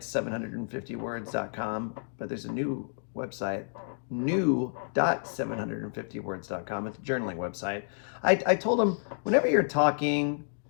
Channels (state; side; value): silent; right; digital silence